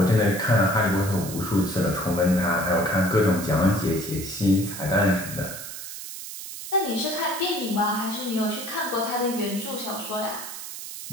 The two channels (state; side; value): noise; right; hiss, 10 dB below the sound